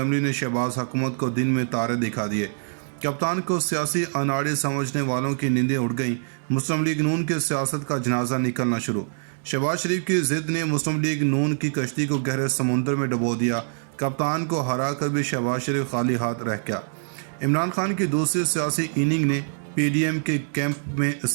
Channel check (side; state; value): left; silent; digital silence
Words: ने शहबाज हुकूमत को दिन में तारे दिखा दिए। कप्तान को सियासी अनाड़े समझने वालों की नींदें उड़ गईं। मुस्लिम लीग नून के सियासत का जनाजा निकलना शुरू। शहबाज शरीफ की जिद ने मुस्लिम लीग नून की कश्ती को गहरे समुंदर में डुबो दिया। कप्तान को हरा कर भी शहबाज शरीफ खाली हाथ रह गया। इमरान खान की दूसरी सियासी इनिंग ने पीडीएम के कैंप में